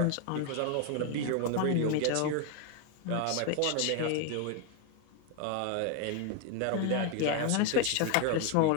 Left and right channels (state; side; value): different; both; correlation 0.01